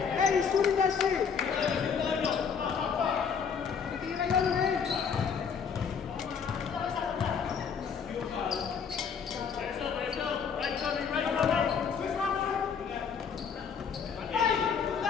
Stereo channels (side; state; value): right; quieter; 6.5 dB